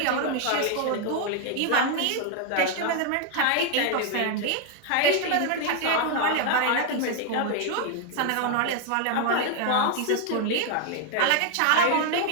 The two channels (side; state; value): both; different; correlation 0.01